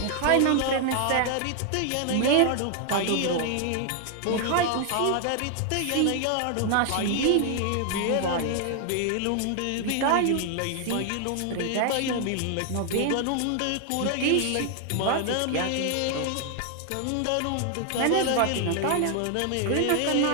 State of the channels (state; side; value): different; both; correlation 0.00